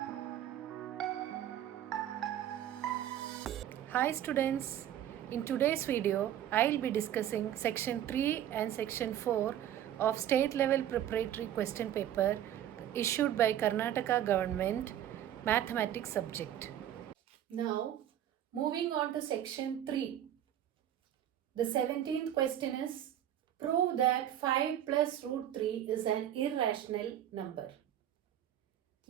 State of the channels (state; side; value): quieter; left; 11.2 dB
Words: students, in today's video I'll be discussing section 3 and section 4 of State Level Preparatory Question Paper issued by Karnataka Government Mathematics subject. Now moving on to section 3. The 17th question is, prove that 5 plus root 3 is an irrational number.